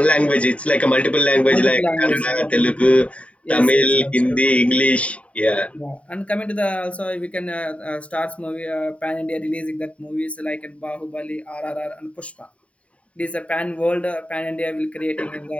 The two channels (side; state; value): right; late; 0.064 ms